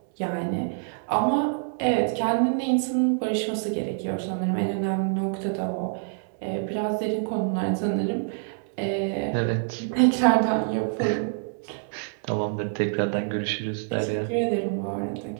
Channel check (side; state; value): left; silent; 61 dB below the other